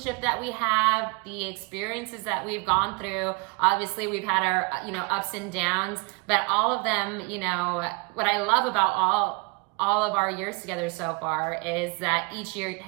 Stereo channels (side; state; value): left; quieter; 30.4 dB